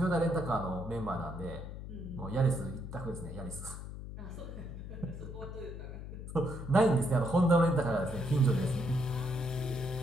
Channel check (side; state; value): left; noise; hum, 9 dB below the sound